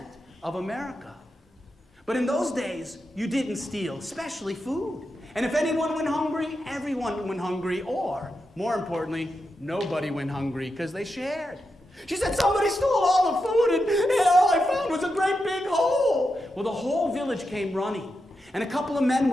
of America. But in those days, you didn't steal, especially food. And if anyone went hungry, everyone went hungry, or, more importantly, nobody went hungry because they shared. She said, "Somebody stole all the food and all I found was a great big hole." Well, the whole village came running. And a couple of men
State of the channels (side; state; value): both; normal; correlation 0.87